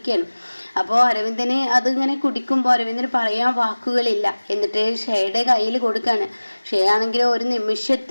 അപ്പോൾ അരവിന്ദന് അതിങ്ങനെ കുടിക്കുമ്പോൾ അരവിന്ദന് പറയാൻ വാക്കുകളില്ല. എന്നിട്ട് ഷേയുടെ കയ്യിൽ കൊടുക്കുകയാണ്. ഷേ ആണെങ്കിലും ഒരു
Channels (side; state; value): both; inverted; correlation -1.00